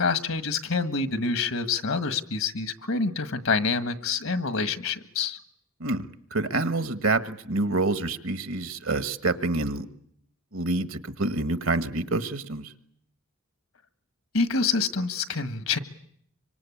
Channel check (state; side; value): normal; both; correlation 0.21